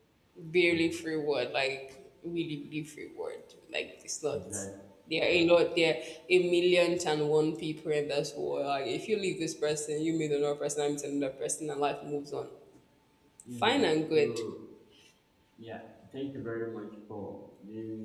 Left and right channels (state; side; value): identical; both; correlation 1.00